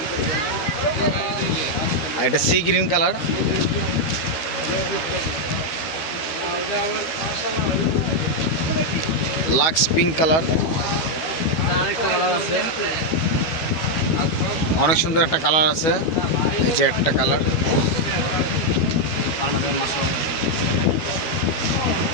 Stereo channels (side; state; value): right; late; 12 ms